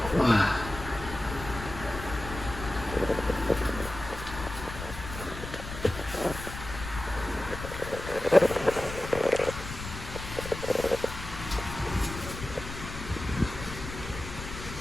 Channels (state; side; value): noise; left; rumble, 9 dB below the sound